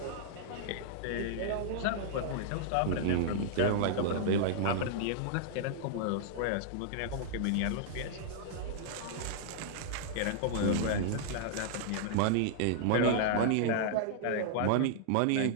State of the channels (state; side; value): different; both; correlation -0.01